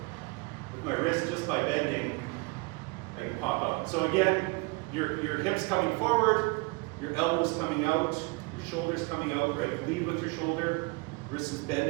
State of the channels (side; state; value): left; quieter; 27.3 dB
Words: With my wrist, just by bending, I can pop out. So again, your hips coming forward, your elbows coming out, your shoulders coming out, right? Lead with your shoulder, wrist is